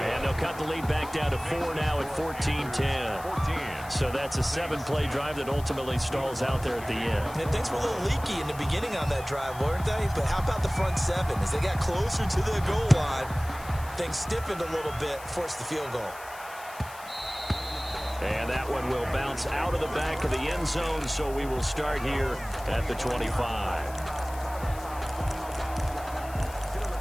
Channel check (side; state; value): left; noise; hiss, 18 dB below the sound